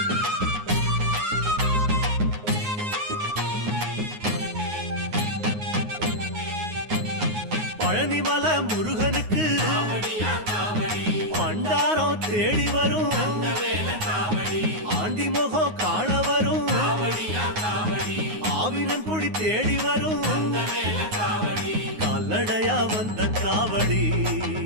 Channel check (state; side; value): late; left; 9.5 ms